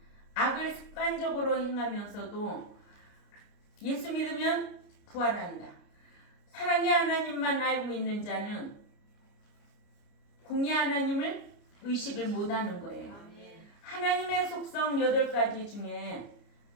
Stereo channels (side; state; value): right; late; 29 ms